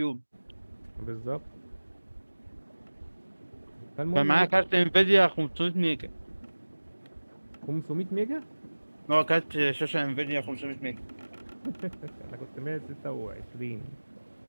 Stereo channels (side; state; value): both; inverted; correlation -1.00